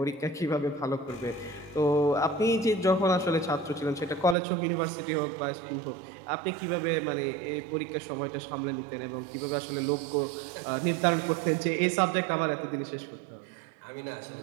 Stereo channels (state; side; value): drops out; left; at 4.4 s